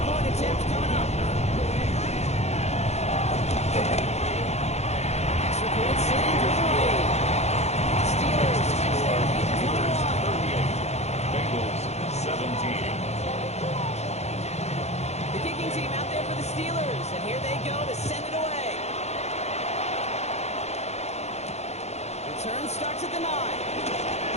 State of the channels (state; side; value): late; right; 0.32 ms